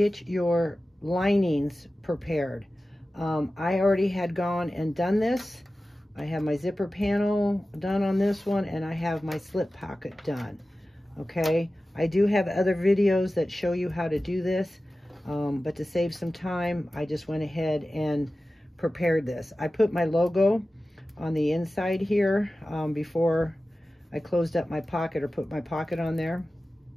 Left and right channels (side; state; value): both; normal; correlation 0.95